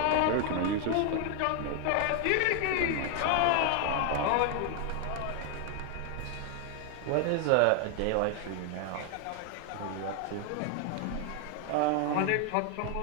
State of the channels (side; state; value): both; different; correlation 0.00